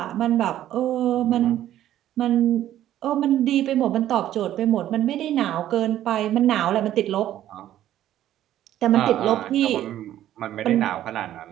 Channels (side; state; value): left; quieter; 12.4 dB